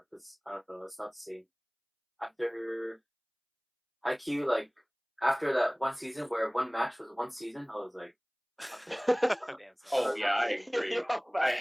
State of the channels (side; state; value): both; identical; correlation 1.00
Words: because I don't know, it's not the same. After Haikyuu, like after that one season where one match was one season, I was like, Damn, son. Oh yeah, I agree. I